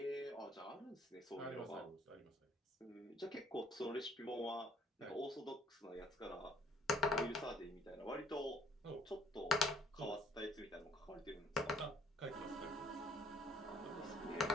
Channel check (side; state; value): both; normal; correlation 0.60